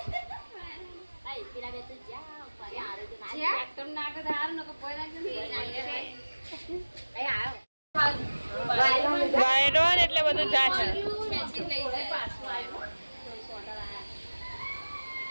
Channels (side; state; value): both; inverted; correlation -1.00